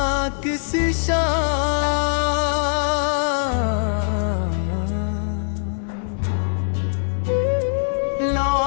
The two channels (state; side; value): silent; right; 64 dB below the other